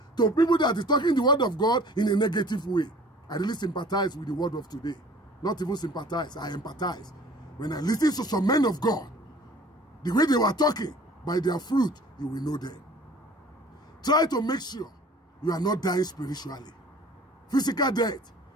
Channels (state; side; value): normal; both; correlation 0.48